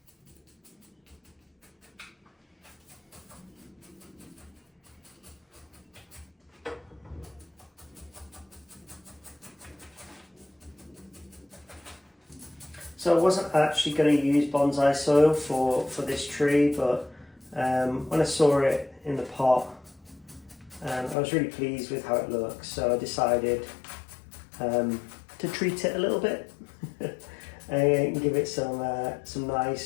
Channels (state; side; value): drops out; right; at 21.2 s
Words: So I wasn't actually going to use bonsai soil for this tree, but when I saw it in the pot, I was really pleased with how it looks, so I decided to treat it a little bit and give it some